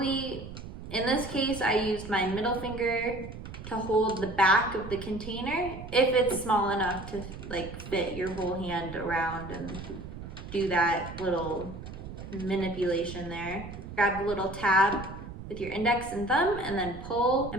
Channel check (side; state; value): right; noise; rumble, 11 dB below the sound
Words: in this case, I used my middle finger to hold the back of the container, if it's small enough to like fit your whole hand around and do that little manipulation there. Grab the little tab with your index and thumb, and then pull